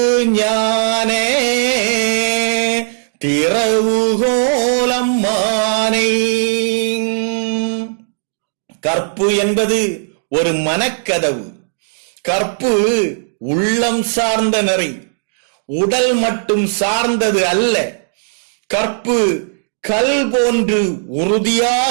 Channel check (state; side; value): silent; left; digital silence